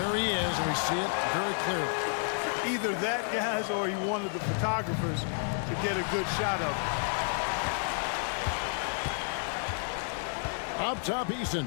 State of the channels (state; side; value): silent; right; 57 dB below the other